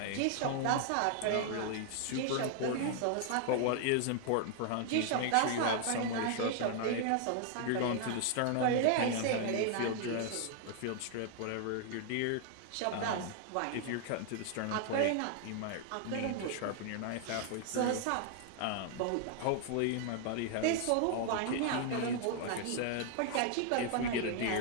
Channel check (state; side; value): different; both; correlation 0.00